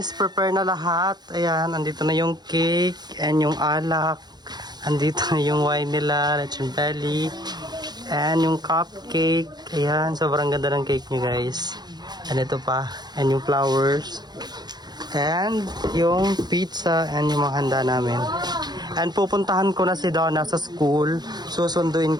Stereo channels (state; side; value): late; left; 0.20 ms